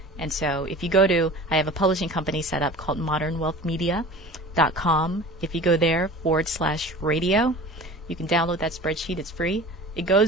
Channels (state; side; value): normal; both; correlation 0.39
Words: And so if you go to, I have a publishing company set up called modernwealthmedia.com. If you go there /radio, you can download that spreadsheet. It's free. It